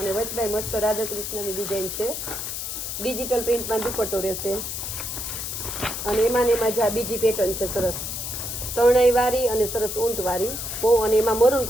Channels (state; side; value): noise; left; hiss, 5 dB below the sound